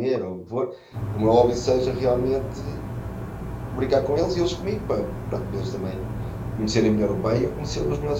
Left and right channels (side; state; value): both; identical; correlation 1.00